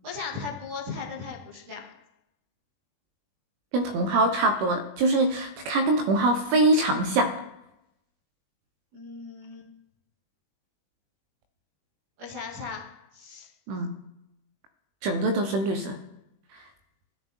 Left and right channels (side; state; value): left; late; 21 ms